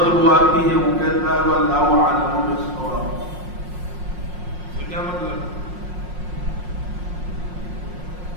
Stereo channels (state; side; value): late; left; 5.6 ms